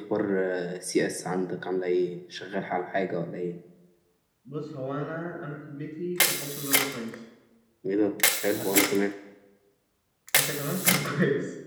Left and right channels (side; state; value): both; identical; correlation 1.00